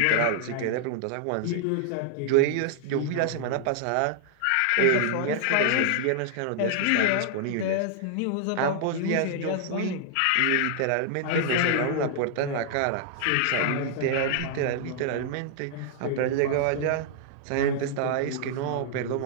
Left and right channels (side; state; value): both; different; correlation 0.00